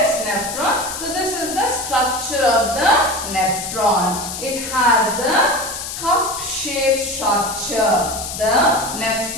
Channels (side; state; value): left; noise; hiss, 7 dB below the sound